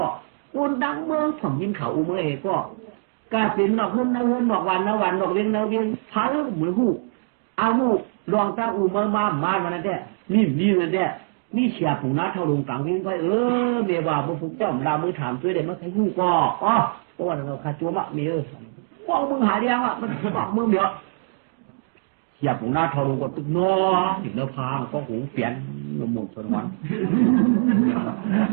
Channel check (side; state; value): left; silent; digital silence